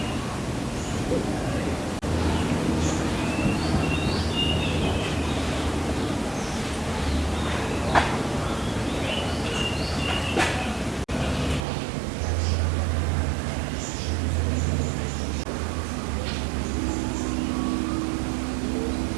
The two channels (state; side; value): drops out; left; at 11.7 s